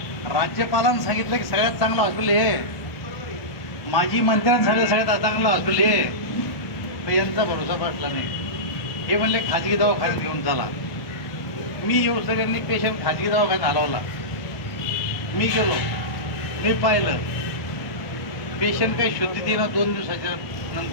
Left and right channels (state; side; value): late; right; 1.5 ms